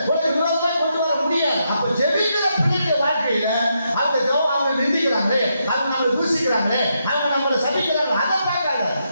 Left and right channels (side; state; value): both; inverted; correlation -0.81